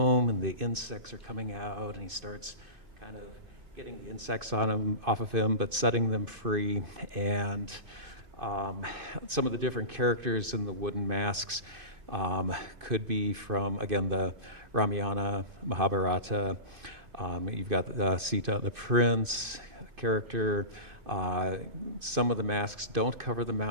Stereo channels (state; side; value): late; left; 2.5 ms